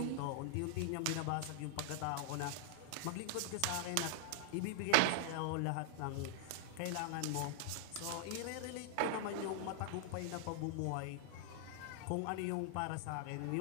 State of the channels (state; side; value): different; both; correlation 0.00